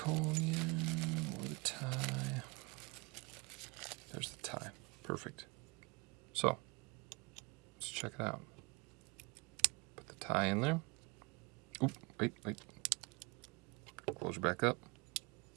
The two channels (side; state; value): left; quieter; 27.2 dB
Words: or the tie. There's the tie. Perfect. So, let's check it out. Put the tie in there. Oop, wait. Close it back up.